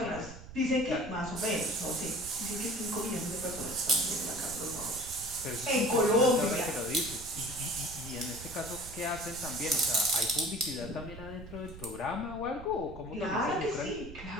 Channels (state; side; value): noise; right; rumble, 14 dB below the sound